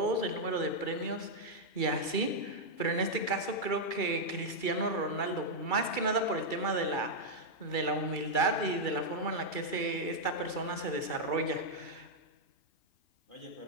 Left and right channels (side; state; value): right; late; 2.3 ms